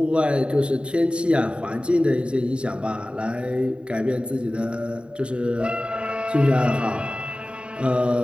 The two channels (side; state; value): left; late; 0.054 ms